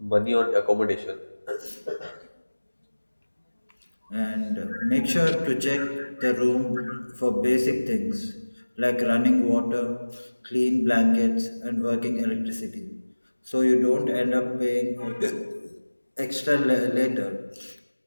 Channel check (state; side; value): inverted; both; correlation -1.00